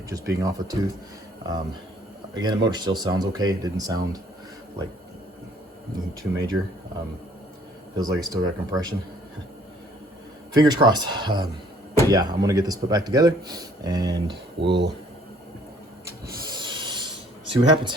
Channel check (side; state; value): both; normal; correlation 0.60